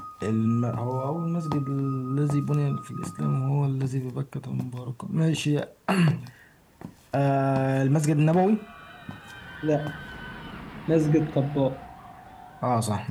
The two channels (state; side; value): identical; both; correlation 1.00